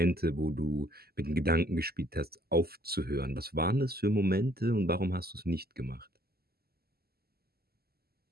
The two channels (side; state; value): left; late; 0.45 ms